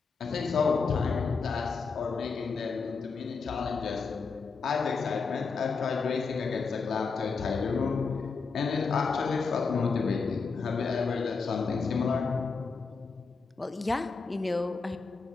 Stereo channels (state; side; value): quieter; right; 4.8 dB